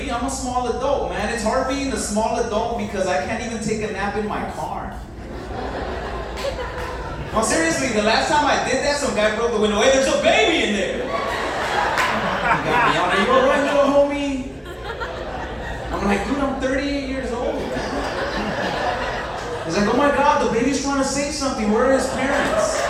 I'm a small adult, man. It's hard being a small adult because I can't even take a nap in my car. No, seriously, the last time I did that, some guy broke the window. Hey, there's a baby in there. He got me on it. You alright, little homie? I'm like, dude, I'm 38 years old, man. He's like, oh my God, the baby's trying to say something. Where are his parents?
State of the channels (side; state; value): both; identical; correlation 1.00